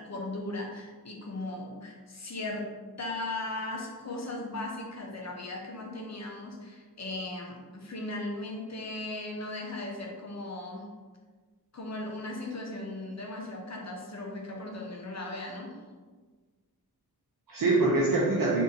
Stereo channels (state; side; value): normal; both; correlation 0.20